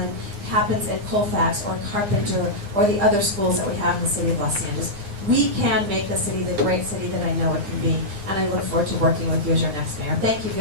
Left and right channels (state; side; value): late; left; 9.8 ms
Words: happens in Colfax or Carpenter or the other schools that we have in the city of Los Angeles. We can make the city the great city that I know it can be. And I look forward to working with you as your next mayor. Thank you